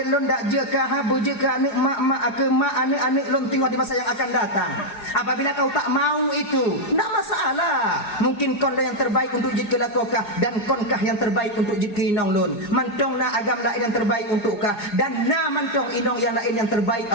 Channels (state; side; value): late; right; 4.8 ms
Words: lon dak jeka habu jeka anak mak ke mak anak lon tengok di masa yang akan datang. Apabila kau tak mau itu tak masalah, mungkin kon yang terbaik untuk jika lakokah dan konkah yang terbaik untuk jika inong lon mantong na agam lain yang terbaik untuk kah dan na mantong inong yang lain yang terbaik